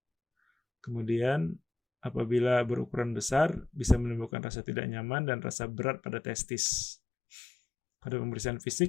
Kemudian apabila berukuran besar, bisa menimbulkan rasa tidak nyaman dan rasa berat pada testis. Pada pemeriksaan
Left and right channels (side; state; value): right; drops out; at 4.3 s